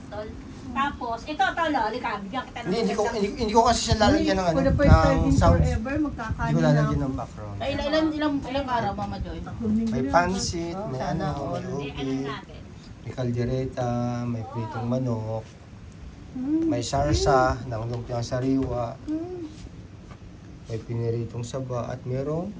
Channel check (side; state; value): both; identical; correlation 1.00